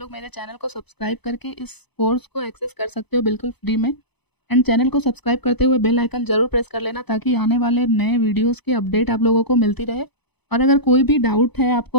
लोग मेरे चैनल को सब्सक्राइब करके इस कोर्स को एक्सेस कर सकते हो बिल्कुल फ्री में। एंड चैनल को सब्सक्राइब करते हुए बेल आइकन ज़रूर प्रेस कर लेना ताकि आने वाले नए वीडियोस की अपडेट आप लोगों को मिलती रहे। और अगर कोई भी डाउट है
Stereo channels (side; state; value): right; late; 0.99 ms